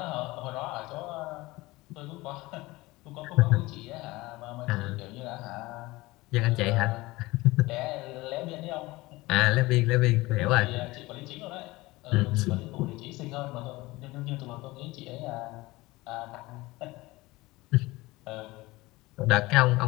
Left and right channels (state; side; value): quieter; right; 20.6 dB